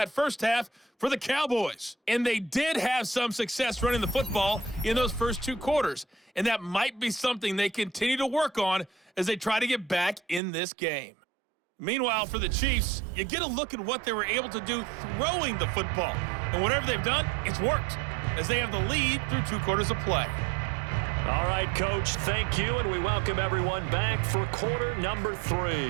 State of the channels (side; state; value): left; drops out; at 10.4 s